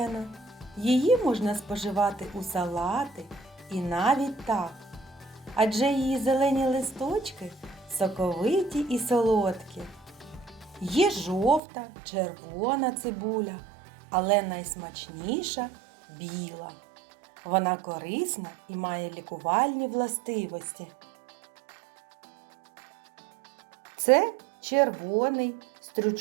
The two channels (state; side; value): drops out; left; at 11.6 s